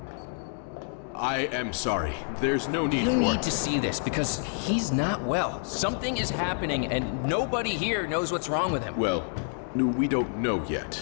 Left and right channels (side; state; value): right; silent; digital silence